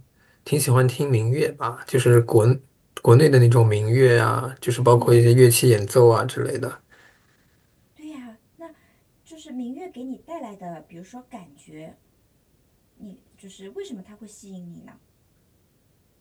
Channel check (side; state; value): both; identical; correlation 1.00